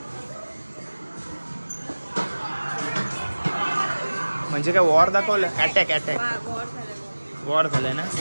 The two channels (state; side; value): inverted; both; correlation -1.00